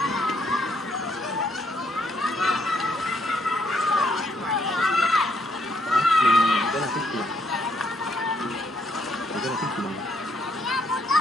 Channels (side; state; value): both; normal; correlation 0.71